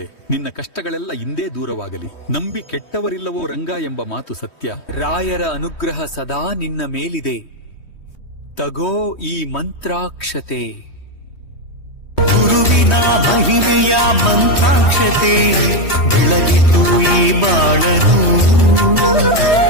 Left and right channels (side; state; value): right; late; 3.2 ms